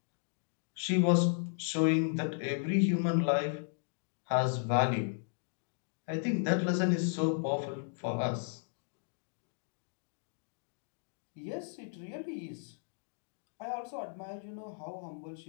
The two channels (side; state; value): right; silent; digital silence